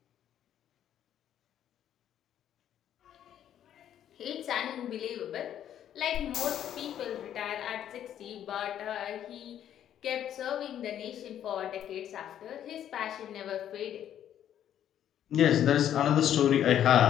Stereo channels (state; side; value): quieter; right; 10.5 dB